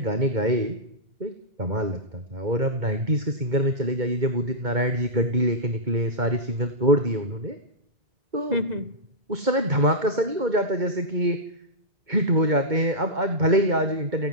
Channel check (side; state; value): left; late; 2.2 ms